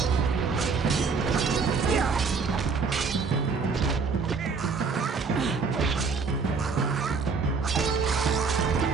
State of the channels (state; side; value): quieter; left; 4.9 dB